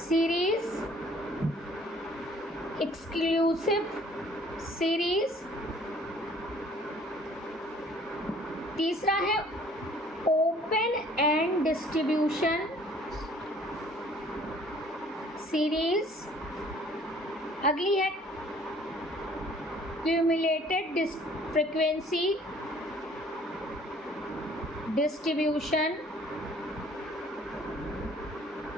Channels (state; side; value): normal; both; correlation 0.55